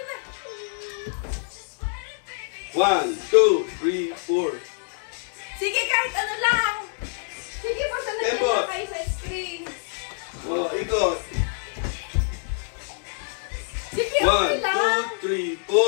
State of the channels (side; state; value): right; silent; digital silence